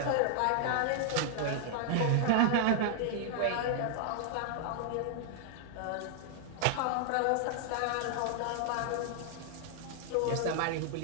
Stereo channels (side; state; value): both; different; correlation 0.00